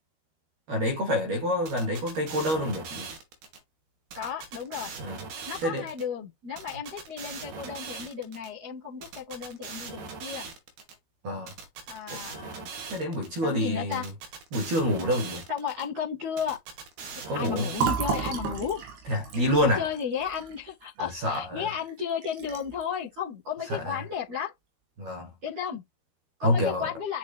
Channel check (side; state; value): left; late; 13 ms